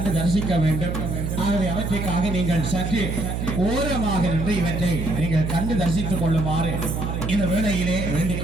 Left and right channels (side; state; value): right; noise; hum, 3 dB below the sound